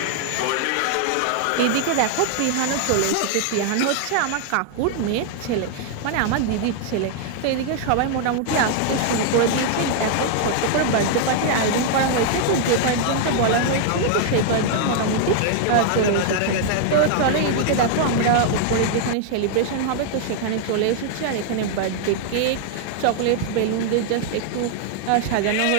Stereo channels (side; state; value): both; different; correlation 0.00